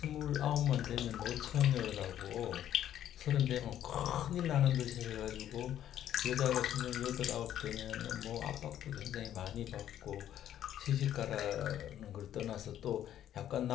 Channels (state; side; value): quieter; right; 11.2 dB